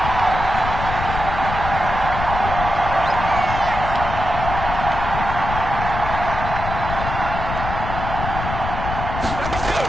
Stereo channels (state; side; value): noise; left; rumble, 5 dB below the sound